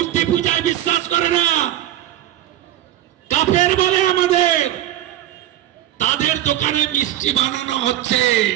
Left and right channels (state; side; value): quieter; left; 13.1 dB